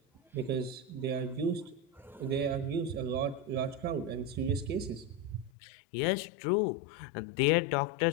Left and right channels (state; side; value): drops out; right; at 5.5 s